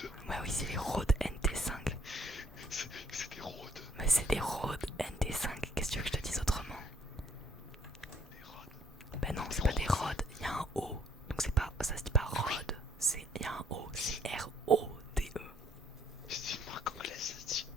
Ouais, oui, c'est les Rhodes NT5. C'est des Rhodes. Mais c'est des Rhodes NT5, qu'est-ce que tu veux que je te dise autrement? Des Rhodes. Bah non, c'est pas des Rhodes, il y a un O. Donc c'est pas, ça se dit pas Rhodes, il y a un O, c'est R-O-D-E. Je dis une marque anglaise, ça se dit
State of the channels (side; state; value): both; normal; correlation 0.65